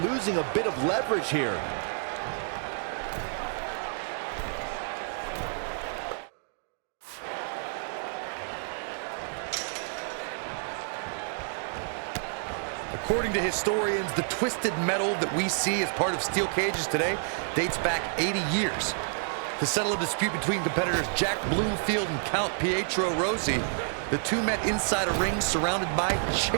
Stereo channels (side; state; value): left; silent; digital silence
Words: losing a bit of leverage here. According to historians, the twisted metal that we see as part of steel cages today dates back 80 years. To settle a dispute between competitors Jack Bloomfield and Count Pietro Rossi, the two met inside a ring surrounded by